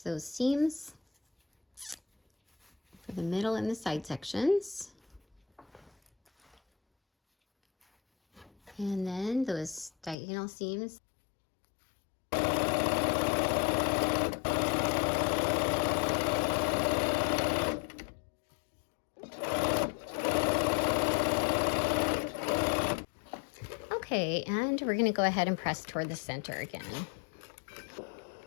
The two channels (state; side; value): drops out; right; at 10.2 s